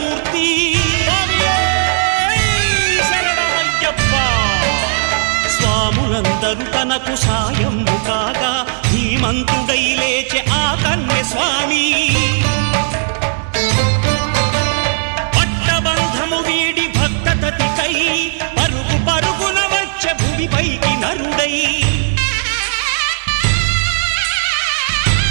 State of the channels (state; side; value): silent; left; digital silence